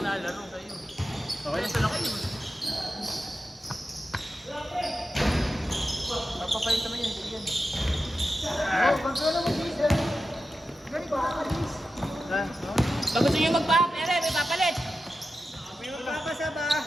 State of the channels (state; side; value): normal; both; correlation 0.91